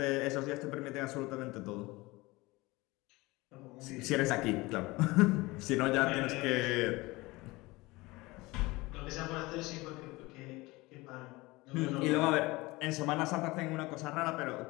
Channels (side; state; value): right; quieter; 21.9 dB